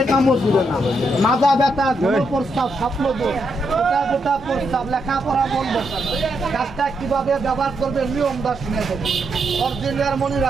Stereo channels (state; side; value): normal; both; correlation 0.80